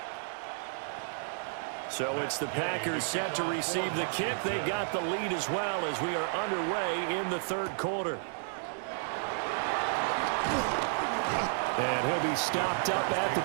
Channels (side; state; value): left; silent; digital silence